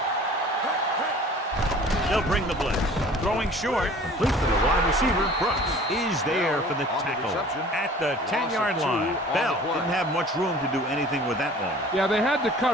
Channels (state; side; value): normal; both; correlation 0.47